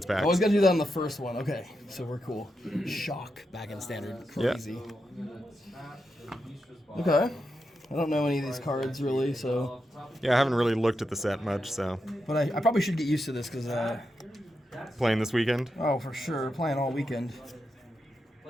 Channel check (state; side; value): normal; both; correlation 0.86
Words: packs. I always gotta do that on the first one. Okay, so we're cool. Shock back in standard. Crazy. Yeah. Okay. I don't know any of these cards really, so. Yeah, I haven't really looked at the set much, so. But I probably should get used to this because. Playing this weekend? Oh, for sure. Playing all weekend.